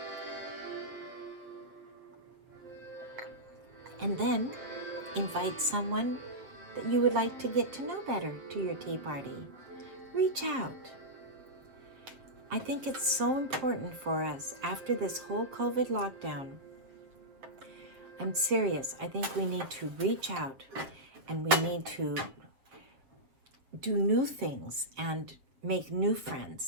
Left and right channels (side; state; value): left; late; 7.4 ms